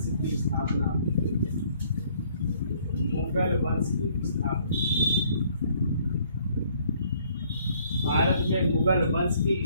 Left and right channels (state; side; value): inverted; both; correlation -0.62